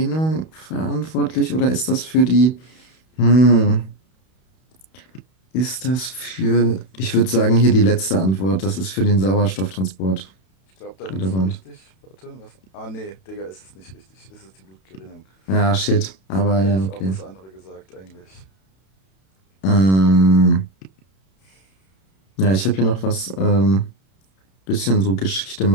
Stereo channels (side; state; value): right; late; 32 ms